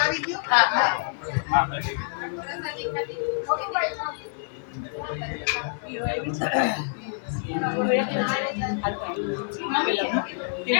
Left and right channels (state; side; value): silent; right; digital silence